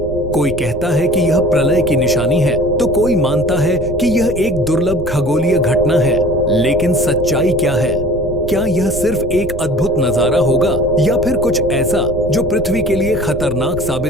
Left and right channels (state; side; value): normal; both; correlation 0.45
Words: कोई कहता है कि यह प्रलय की निशानी है, तो कोई मानता है कि यह एक दुर्लभ खगोलीय घटना है। लेकिन सच्चाई क्या है? क्या यह सिर्फ एक अद्भुत नजारा होगा या फिर कुछ ऐसा जो पृथ्वी के लिए खतरनाक